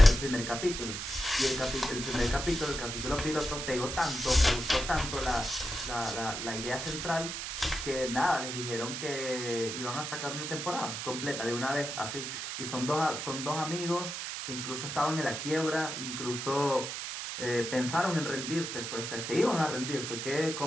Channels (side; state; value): right; noise; hiss, 5 dB below the sound